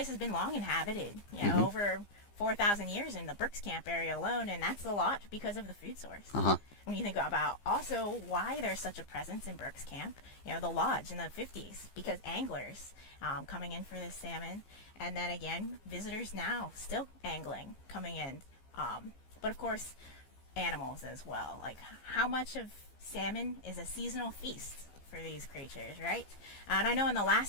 has been long inhabited, over 4,000 years in the Brooks Camp area alone, and that's a lot because of the food source. Uh-huh. When you think about also why there's such a presence in Brooks Camp, the lodge in the 50s, because anglers coming in for this salmon, and then again, visitors now still angling, coming in. But of course, animals as well. Like, how much of salmon is a seasonal feast for these creatures, right? And I know in the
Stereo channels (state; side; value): late; right; 15 ms